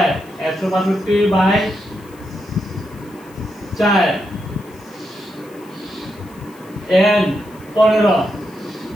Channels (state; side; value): noise; left; hiss, 27 dB below the sound